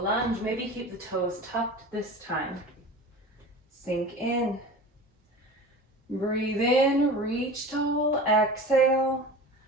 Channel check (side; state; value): both; normal; correlation 0.36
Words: lunge. Maybe keep the toes tucked this time. Sink in. Breathe in, reach tall. Exhale.